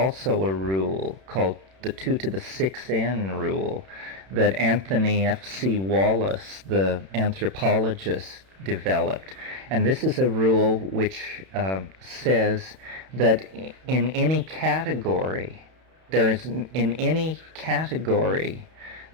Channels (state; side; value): late; left; 31 ms